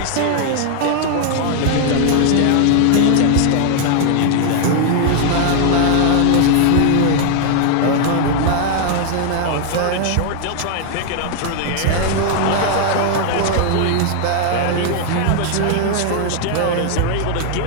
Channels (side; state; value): both; different; correlation 0.00